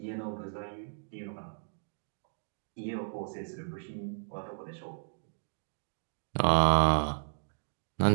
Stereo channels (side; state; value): left; silent; digital silence